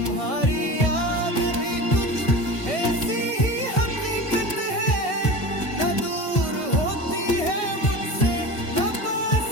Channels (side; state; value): right; late; 1.6 ms